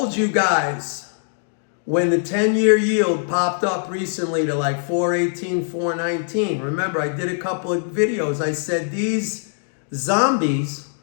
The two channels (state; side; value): silent; right; digital silence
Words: you guys when the 10-year yield popped up recently to like 418, 419. Remember, I did a couple of videos. I said these zombies